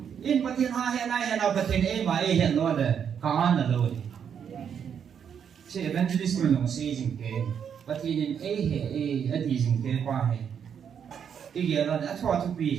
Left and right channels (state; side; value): quieter; left; 7.8 dB